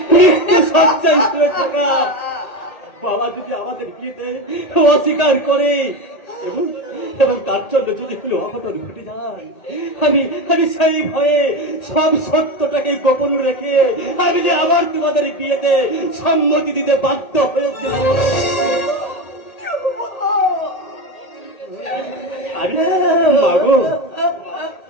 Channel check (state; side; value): late; right; 1.8 ms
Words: সচ্চাই শুয়েছে না। বাবা যদি আমাদের বিয়েতে অস্বীকার করে এবং তার জন্য যদি কোনো অঘটন ঘটে যায়, আমি সেই ভয়ে সব সত্যটাকে গোপন রেখে আমি যে আবার তোমাদের বিয়েতে সম্মতি দিতে বাধ্য হয়েছিলাম। আরে মাগো,